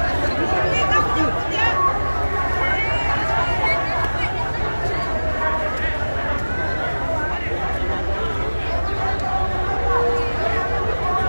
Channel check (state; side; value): inverted; both; correlation -1.00